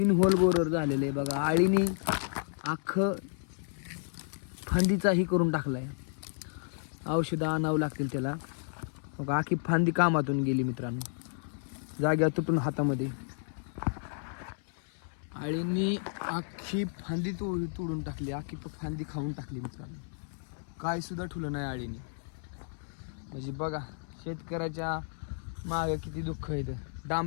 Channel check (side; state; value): right; silent; 56 dB below the other